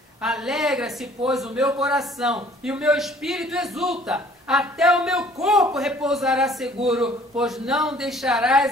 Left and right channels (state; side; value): normal; both; correlation 0.55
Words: Alegra-se, pois, o meu coração, e o meu espírito exulta. Até o meu corpo repousará seguro, pois não